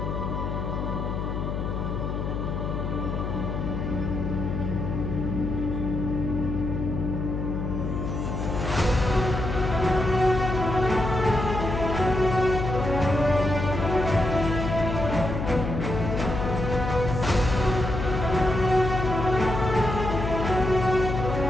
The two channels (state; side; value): noise; left; hum, 3 dB below the sound